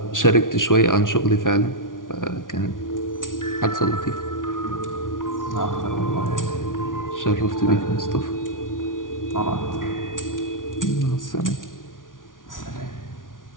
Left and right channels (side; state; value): right; late; 0.88 ms